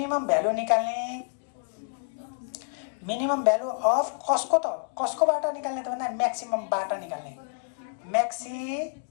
भ्यालु निकाल्ने। मिनिमम भ्यालु अफ कसको? त कसकोबाट निकाल्ने त भन्दा म्याक्सिममबाट निकाल्ने। म्याक्सिमम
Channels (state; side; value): silent; right; digital silence